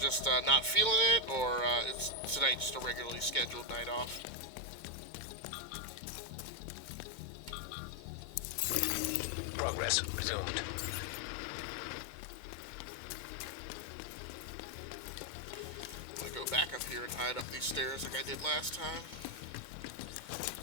not feeling it, or is tonight just a regularly scheduled night off? Progress resumed. I'm gonna go back up here and hide up these stairs like I did last time.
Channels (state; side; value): late; right; 2.2 ms